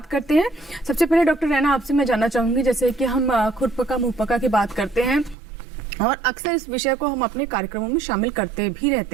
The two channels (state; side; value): drops out; left; at 5.4 s